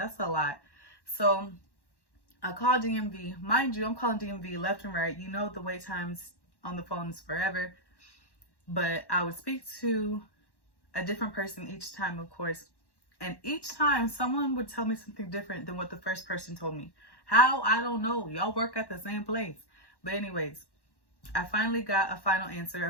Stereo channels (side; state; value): right; late; 1.1 ms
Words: a lot. So I called DMV. Mind you, I'm calling DMV left and right. You know, the wait times on the phone is forever. But I would speak to a different person each time, of course. And each time someone would tell me something different than what the first person told me. How? I don't know. Y'all work at the same place. But anyways, I finally got a final answer